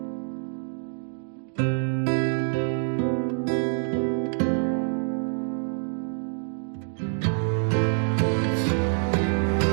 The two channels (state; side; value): silent; left; digital silence